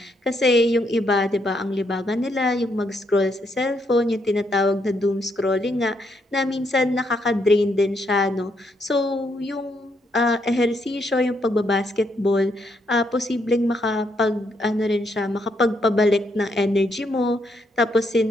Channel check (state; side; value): normal; both; correlation 0.76